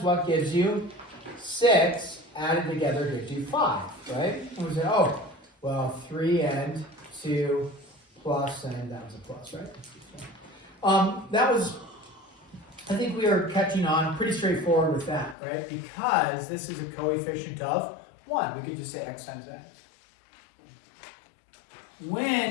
gives you 6 added together gives you 5, right? And we said, oh, well, 3 and 2 plus, and that was a plus, right? That was, I think we are catching on pretty straightforward with that, right? Because this is a coefficient of 1. We could just say x times x.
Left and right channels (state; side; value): drops out; right; at 15.4 s